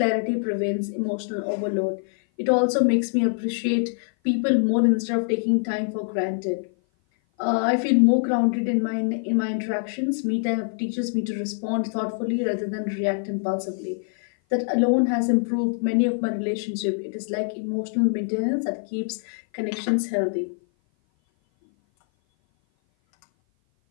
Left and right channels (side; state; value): right; silent; 56 dB below the other